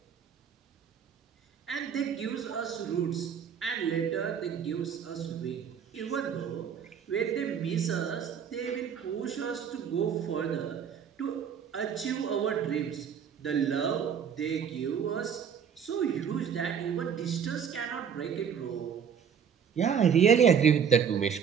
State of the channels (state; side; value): quieter; left; 7.5 dB